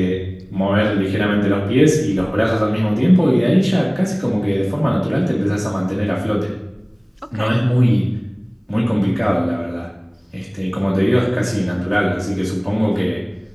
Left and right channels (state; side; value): identical; both; correlation 1.00